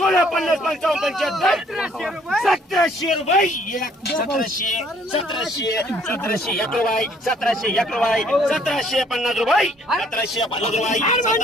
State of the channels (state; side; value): normal; both; correlation 0.62